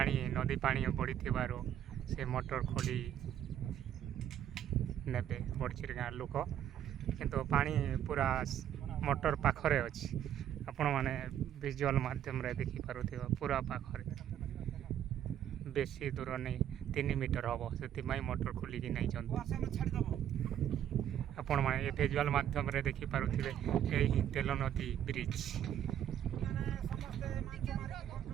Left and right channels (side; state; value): left; quieter; 10.4 dB